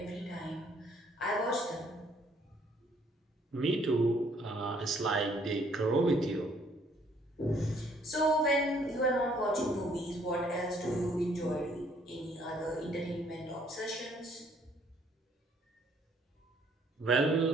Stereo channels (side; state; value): both; normal; correlation 0.64